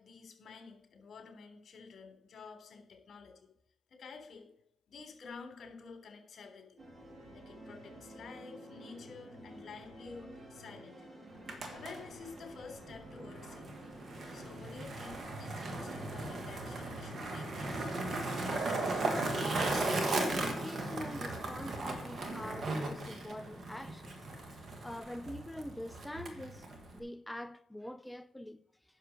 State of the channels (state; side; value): normal; both; correlation 0.81